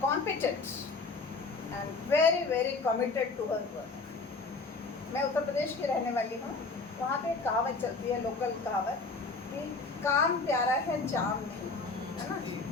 competent and very very committed to her work. मैं उत्तर प्रदेश की रहने वाली हूँ। वहाँ पे कहावत चलती है, लोकल कहावत, कि काम प्यारा है जाम नहीं, है ना।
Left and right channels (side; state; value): right; quieter; 3.9 dB